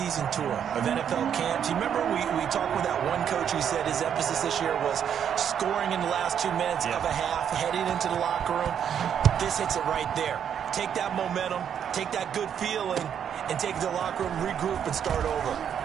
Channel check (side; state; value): left; quieter; 8.6 dB